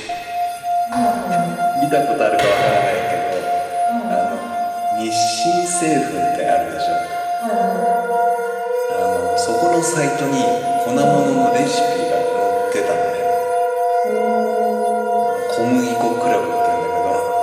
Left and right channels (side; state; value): both; identical; correlation 1.00